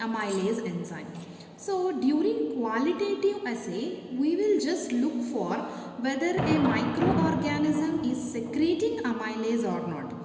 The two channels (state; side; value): identical; both; correlation 1.00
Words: enzyme. So during qualitative assay, we will just look for whether a microorganism is secreting amylase or not.